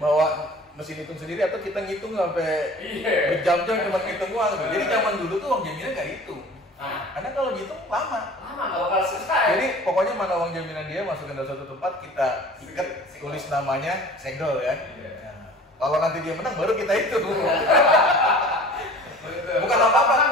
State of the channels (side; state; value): both; normal; correlation 0.43